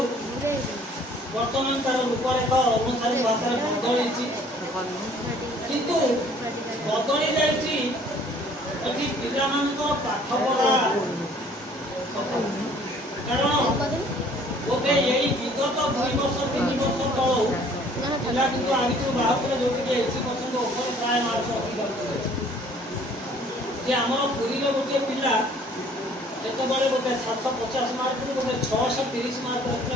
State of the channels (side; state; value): both; normal; correlation 0.56